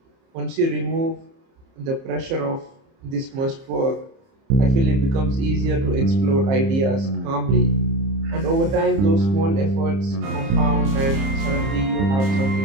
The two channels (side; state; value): left; late; 30 ms